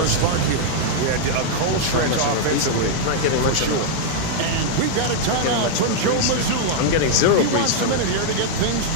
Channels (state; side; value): different; both; correlation -0.01